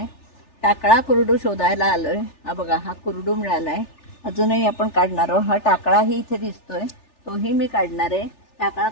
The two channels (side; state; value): right; late; 3.4 ms